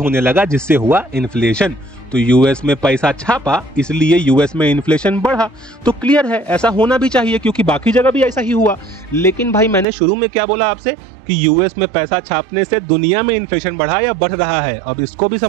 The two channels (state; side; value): drops out; left; at 9.9 s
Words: लगा, जिससे हुआ इन्फ्लेशन। तो यूएस में पैसा छापा, इसलिए यूएस में इन्फ्लेशन बढ़ा। तो क्लियर है, ऐसा होना भी चाहिए, क्योंकि बाकी जगह भी ऐसा ही हुआ। लेकिन भाई मैंने शुरू में क्या बोला आपसे कि यूएस में पैसा छापने से दुनिया में इन्फ्लेशन बढ़ा या बढ़ रहा है। अब इसको भी